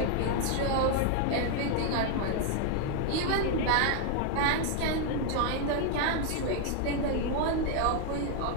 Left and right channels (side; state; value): both; different; correlation 0.00